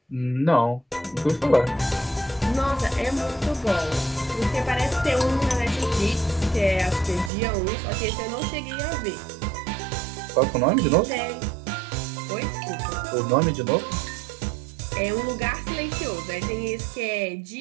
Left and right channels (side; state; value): left; drops out; at 7.3 s